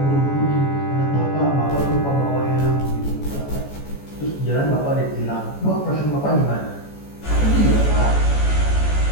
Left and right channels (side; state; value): right; late; 14 ms